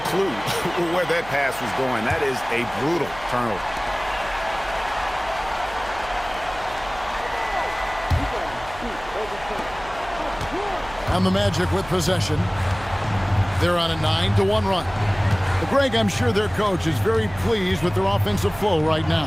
clue where that pass was going. That is a brutal turnover. And the Magic with possession. They're on a 9-1 run. Greg, I'm sure their coach is very pleased with their offensive flow right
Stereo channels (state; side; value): noise; right; hum, 17 dB below the sound